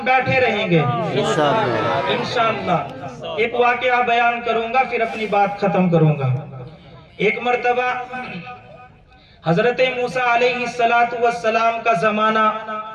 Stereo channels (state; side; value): identical; both; correlation 1.00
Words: بیٹھے رہیں گے انشاءاللہ. ایک واقعہ بیان کروں گا پھر اپنی بات ختم کروں گا. ایک مرتبہ حضرت موسیٰ علیہ السلام کا زمانہ,